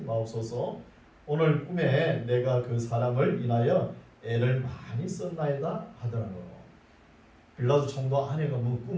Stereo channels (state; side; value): identical; both; correlation 1.00